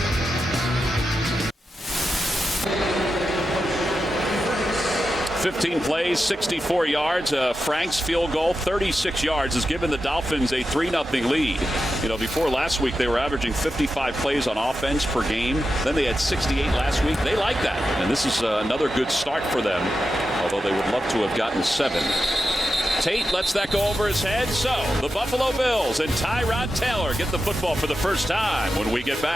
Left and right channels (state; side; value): normal; both; correlation 0.90